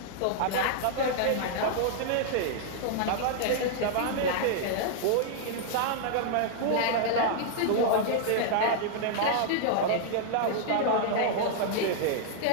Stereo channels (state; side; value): different; both; correlation -0.01